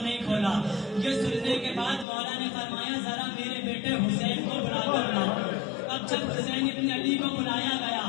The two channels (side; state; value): right; drops out; at 2.1 s